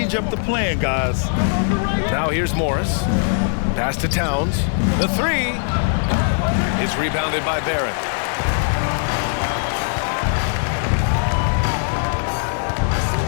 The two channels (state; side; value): silent; right; digital silence